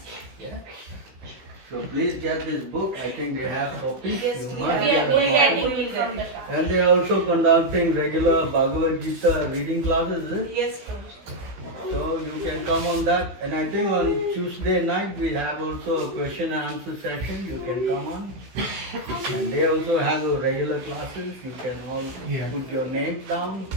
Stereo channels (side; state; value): left; late; 16 ms